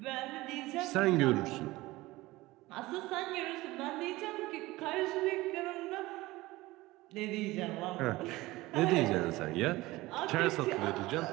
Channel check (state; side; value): quieter; left; 19.4 dB